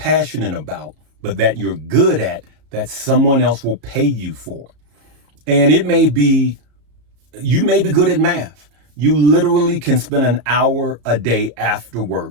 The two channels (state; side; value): late; left; 34 ms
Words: about, but that you're good at, that someone else will pay you for. And it may be, you may be good at math. You literally can spend an hour a day after